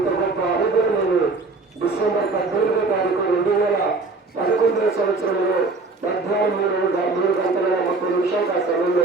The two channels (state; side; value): quieter; left; 3.7 dB